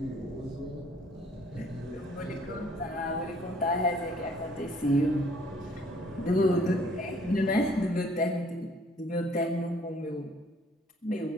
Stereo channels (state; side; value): normal; both; correlation 0.59